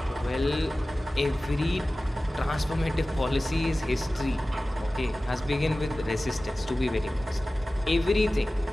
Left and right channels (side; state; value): both; normal; correlation 0.97